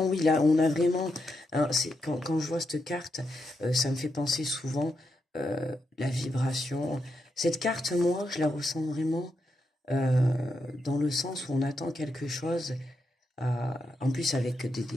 oui, là, on a vraiment... Hein, quand je vois cette carte, ça me fait penser souvent la vibration. Cette carte, moi, je la ressens vraiment dans le sens où on attend quelque chose. En plus, avec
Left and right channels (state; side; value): normal; both; correlation 0.83